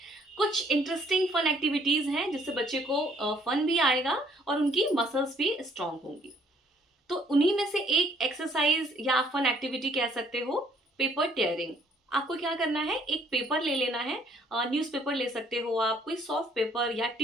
कुछ इंटरेस्टिंग फन एक्टिविटीज हैं जिससे बच्चे को फन भी आएगा और उनकी मसल्स भी स्ट्रांग होंगी। तो उन्हीं में से एक एक्सरसाइज या फन एक्टिविटी कह सकते हो पेपर टेयरिंग। आपको क्या करना है, एक पेपर ले लेना है, न्यूज़पेपर ले सकते हो आप, कोई सॉफ्ट पेपर या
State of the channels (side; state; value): both; normal; correlation 0.64